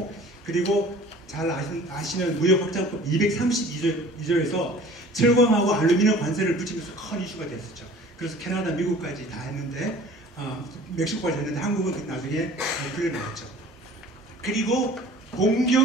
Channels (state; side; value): normal; both; correlation 0.47